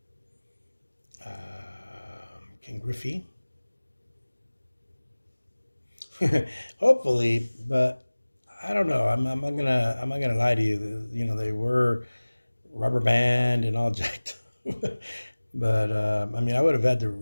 Ken Griffey. Hopefully, but I don't know. I'm not gonna lie to you. You know, they were rubber band and all jacked up. But I mean, I would have had to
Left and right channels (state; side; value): inverted; both; correlation -1.00